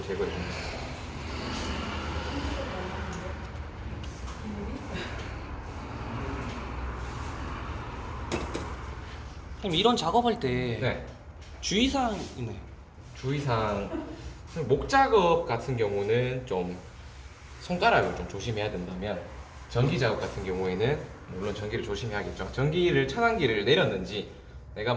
제거해 줍니다. 선생님 이런 작업할 때 네. 주의사항 있나요? 주의사항 목 작업 같은 경우는 좀 손가락을 좀 조심해야 된다면 전기 작업 같은 경우에는 물론 전기를 조심해야겠죠. 전기를 차단기를 내렸는지 내가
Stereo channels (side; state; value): both; identical; correlation 1.00